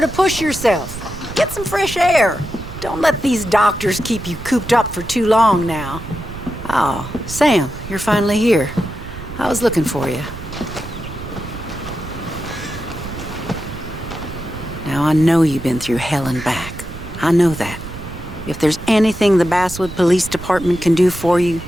to push yourself. Get some fresh air. Don't let these doctors keep you cooped up for too long now. Oh, Sam, you're finally here. I was looking for you. Now, I know you've been through hell and back. I know that. If there's anything the Basswood Police Department can do for you,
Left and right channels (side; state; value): right; noise; rumble, 11 dB below the sound